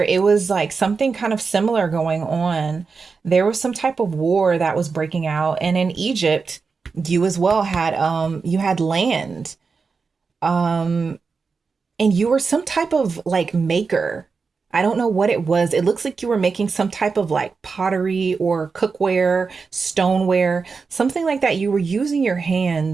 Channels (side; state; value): left; quieter; 4.9 dB